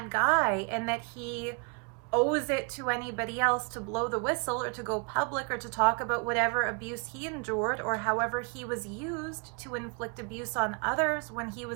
guy and that he owes it to anybody else to blow the whistle or to go public or to talk about whatever abuse he endured or however he was used to inflict abuse on others when he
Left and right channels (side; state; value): left; quieter; 35.6 dB